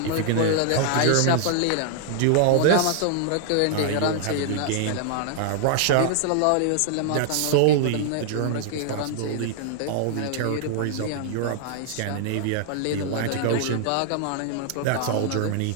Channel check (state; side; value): different; both; correlation -0.01